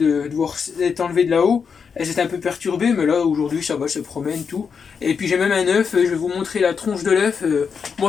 devoir être enlevées de là-haut. Elles étaient un peu perturbées, mais là aujourd'hui ça va, elles se promènent tout. Et puis j'ai même un œuf, je vais vous montrer la tronche de l'œuf.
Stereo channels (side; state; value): right; quieter; 6.1 dB